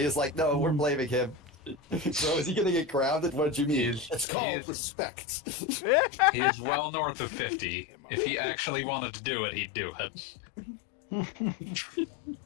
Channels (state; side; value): drops out; right; at 4.2 s